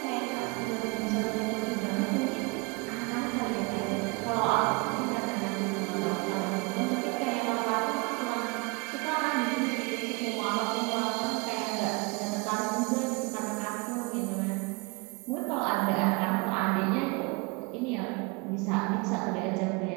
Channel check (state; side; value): quieter; left; 28.0 dB